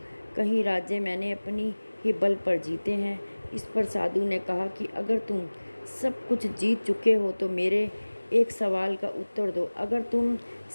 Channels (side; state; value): both; inverted; correlation -1.00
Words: कई राज्य मैंने अपनी ही बल पर जीते हैं। इस पर साधु ने कहा कि अगर तुम सब कुछ जीत चुके हो तो मेरे एक सवाल का उत्तर दो। अगर तुम